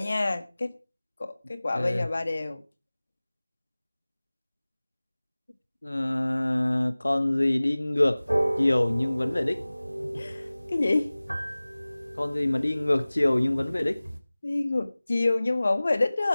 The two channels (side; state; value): both; inverted; correlation -0.99